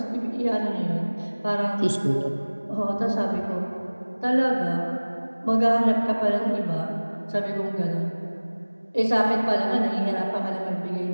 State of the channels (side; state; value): both; inverted; correlation -1.00